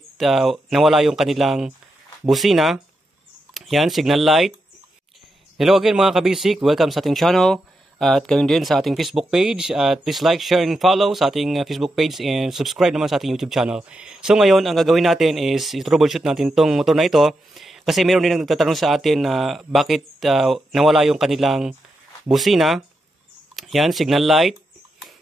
nawala yung kanilang busina. Yan, signal light. Hello again mga kabisik, welcome sa ating channel. At gayon din sa ating Facebook page. At please like, share, and follow sa ating Facebook page. And subscribe naman sa ating YouTube channel. So ngayon, ang gagawin natin is i-troubleshoot natin tong motor na ito. Kasi meron din nagtatanong sa atin na bakit nawala yung kanilang busina. Yan, signal light.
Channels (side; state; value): both; normal; correlation 0.86